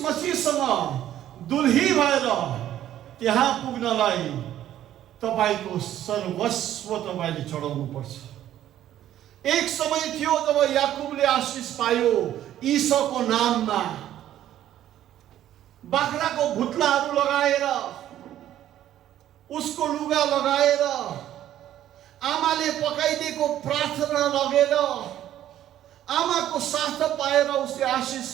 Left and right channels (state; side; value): quieter; left; 12.0 dB